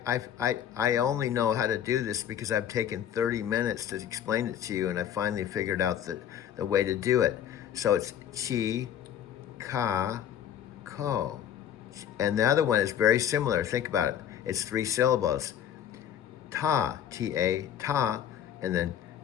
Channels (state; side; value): quieter; right; 9.8 dB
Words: only know how to do this because I've taken 30 minutes to explain it to you, and I finally figured out the way to do it. So it's chi, ka, ko. And the other one is very similar. Think about it. It's 3 syllables. Ta, T-A, ta, and then